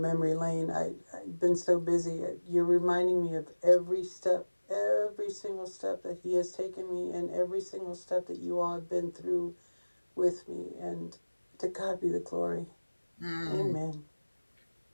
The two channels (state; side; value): inverted; both; correlation -1.00